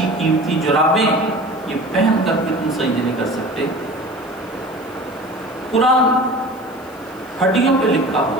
قیمتی جرابیں، یہ پہن کر کے تم سجدے نہیں کر سکتے۔ قرآن ہڈیوں پہ لکھا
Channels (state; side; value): noise; left; hiss, 27 dB below the sound